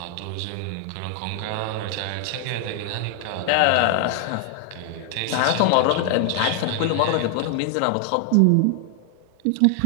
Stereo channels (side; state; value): both; different; correlation 0.00